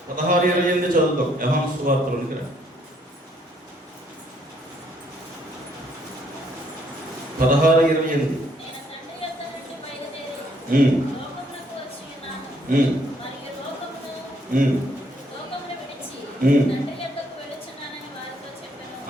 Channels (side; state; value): both; normal; correlation 0.68